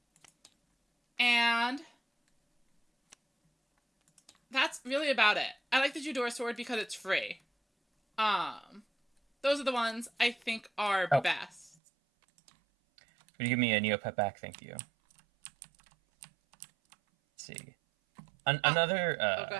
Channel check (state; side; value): drops out; left; at 11.8 s